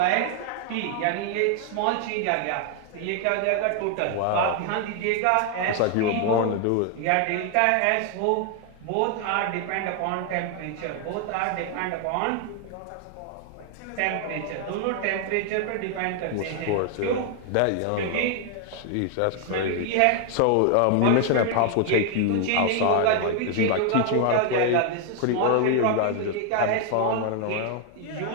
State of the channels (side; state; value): both; different; correlation 0.00